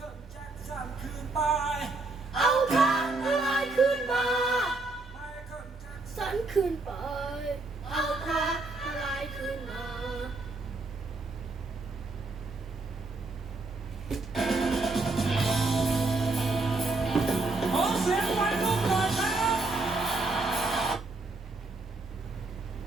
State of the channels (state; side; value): quieter; left; 3.5 dB